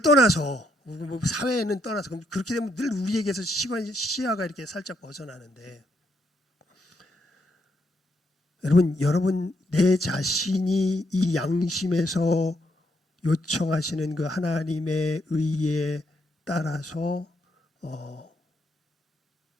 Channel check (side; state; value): both; normal; correlation 0.76